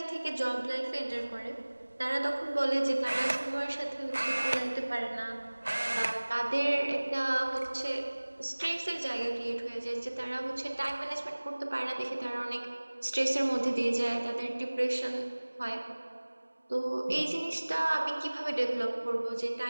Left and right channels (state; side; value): inverted; both; correlation -1.00